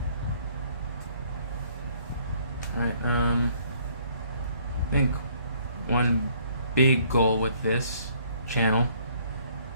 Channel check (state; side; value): inverted; both; correlation -0.62